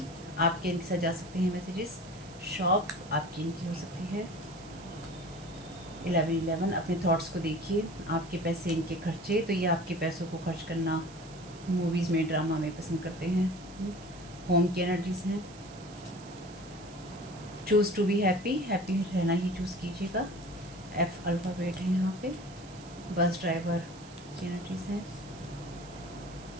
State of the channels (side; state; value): right; noise; hiss, 19 dB below the sound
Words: आपके इनके साथ जा सकते हैं मैसेजेस। शॉप आपकी इनकी हो सकती है। 11 अपने थॉट्स को देखिए। आपके पैसे इनके खर्चे, तो ये आपके पैसों को खर्च करना मूवीज़ में, ड्रामा में पसंद करते हैं। होम की एनर्जीज हैं। Choose to be happy, happy रहना ही चूज़ कीजिएगा। एफ अल्फ़ाबेट है यहाँ पे। बस ड्राइवर की एनर्जीज हैं।